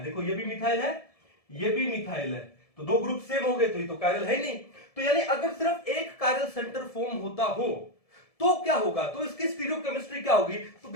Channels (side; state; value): right; late; 1.7 ms